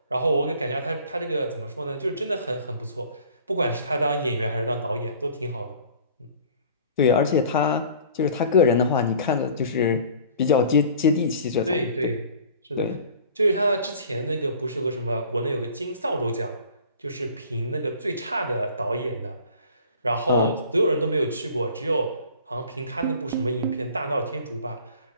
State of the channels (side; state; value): both; inverted; correlation -0.48